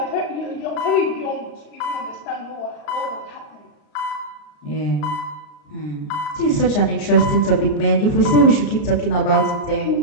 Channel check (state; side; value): late; right; 33 ms